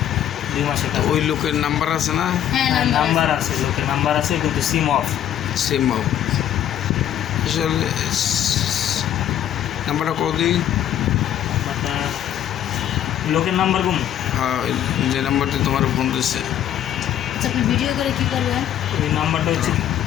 2 মাসের তো ওই লোকের নাম্বার আছে না? হ্যাঁ নাম্বার আছে, লোকের নাম্বার আছে, কিন্তু সিম অফ। সেম আসলে নাম্বারটা কদিন? আপনার লোকের নাম্বার কোন? হ্যাঁ, যে নাম্বারটি তোমার ফোন দিচ্ছে। আচ্ছা, আপনি ভিডিও করে কি করবেন? ওই নাম্বারটা হচ্ছে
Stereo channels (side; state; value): right; quieter; 10.9 dB